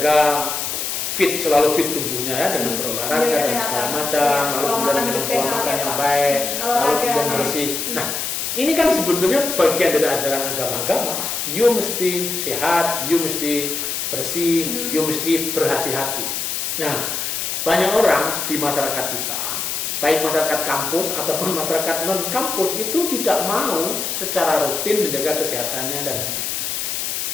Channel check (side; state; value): left; noise; hiss, 2 dB below the sound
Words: selalu fit tubuhnya ya dengan berolahraga dan segala macam, lalu kemudian dengan pola makan yang baik, lalu kemudian bersih. Nah, ini kan sebetulnya bagian dari ajaran agama-agama. You mesti sehat, you mesti bersih, you mesti berhati-hati. Nah, banyak orang di masyarakat kita, baik masyarakat kampus ataupun masyarakat non-kampus itu tidak mau secara rutin menjaga kesehatannya dan